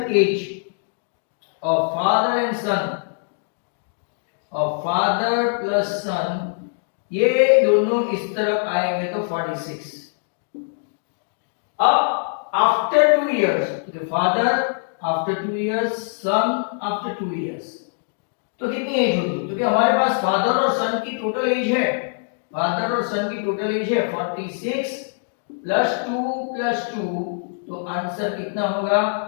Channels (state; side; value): silent; right; digital silence